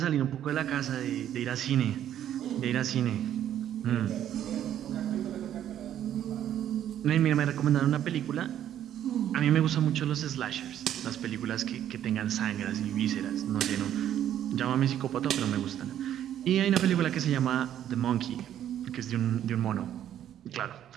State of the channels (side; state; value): left; quieter; 10.9 dB